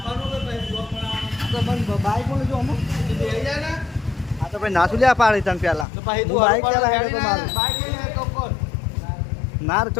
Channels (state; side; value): drops out; right; at 5.9 s